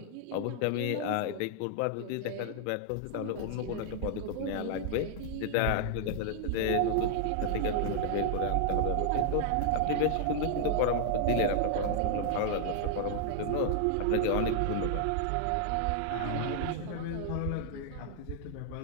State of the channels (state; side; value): different; both; correlation -0.01